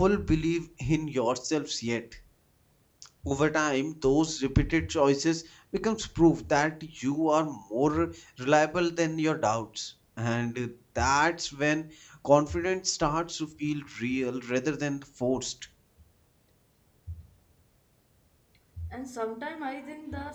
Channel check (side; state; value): both; identical; correlation 1.00